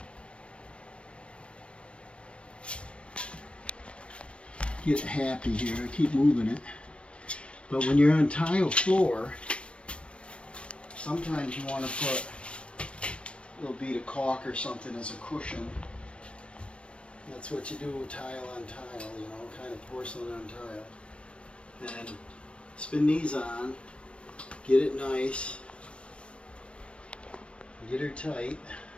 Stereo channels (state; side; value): late; right; 0.060 ms